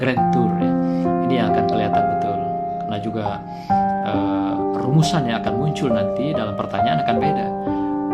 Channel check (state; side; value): identical; both; correlation 1.00